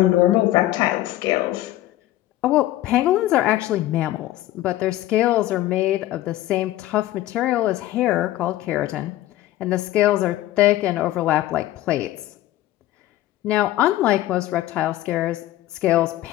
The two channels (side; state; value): right; quieter; 14.9 dB